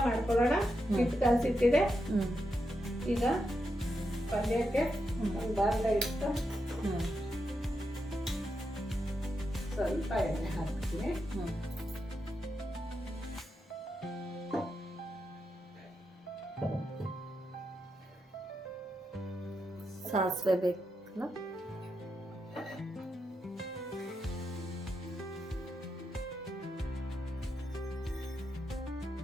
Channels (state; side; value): normal; both; correlation 0.85